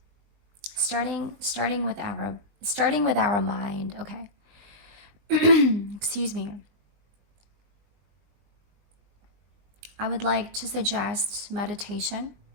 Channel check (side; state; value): left; late; 20 ms